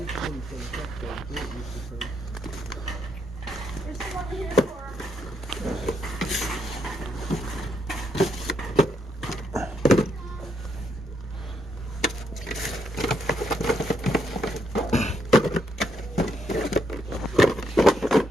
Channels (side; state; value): both; normal; correlation 0.77